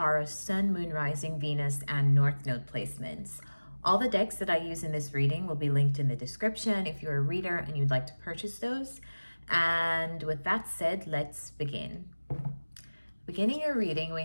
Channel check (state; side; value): inverted; both; correlation -1.00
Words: Sun, Moon, Rising, Venus, and North Node placements. All the decks that I use in this reading will be linked in the description if you're a reader and you'd like to purchase those. And with that said, let's begin. Beginning your reading, we